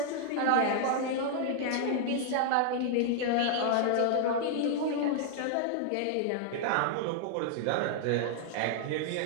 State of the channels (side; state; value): both; different; correlation -0.01